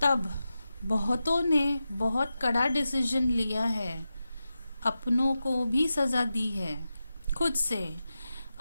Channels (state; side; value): inverted; both; correlation -0.92